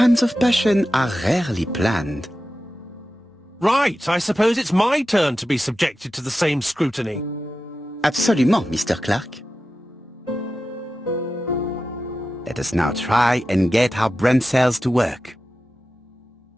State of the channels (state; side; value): normal; both; correlation 0.92